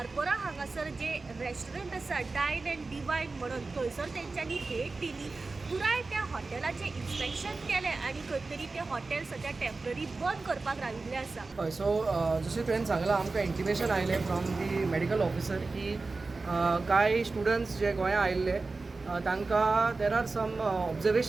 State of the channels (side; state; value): left; quieter; 3.7 dB